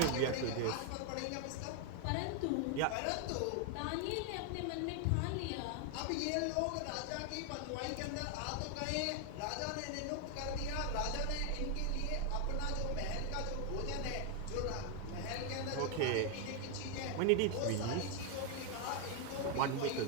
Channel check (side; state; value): both; different; correlation 0.00